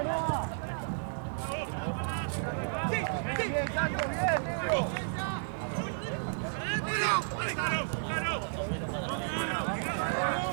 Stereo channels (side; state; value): left; silent; digital silence